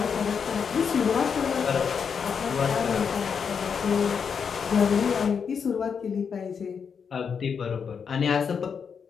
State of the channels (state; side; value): quieter; right; 6.5 dB